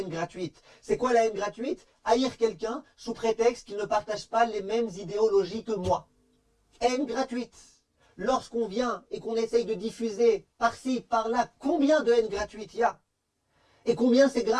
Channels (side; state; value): both; identical; correlation 1.00